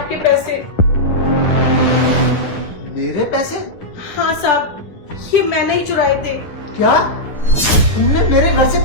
पैसे। मेरे पैसे? हाँ साहब, ये मैंने ही चुराए थे। क्या तुमने मेरे घर से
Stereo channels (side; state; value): right; late; 10 ms